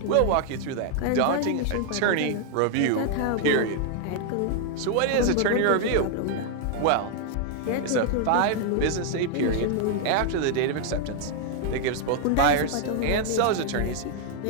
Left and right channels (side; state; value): both; different; correlation 0.00